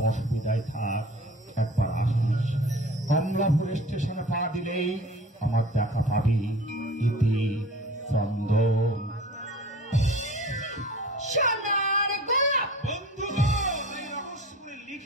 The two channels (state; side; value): normal; both; correlation 0.42